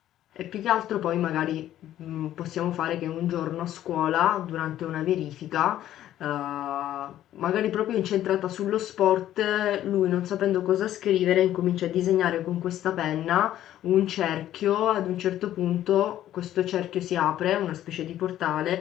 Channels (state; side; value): quieter; right; 12.4 dB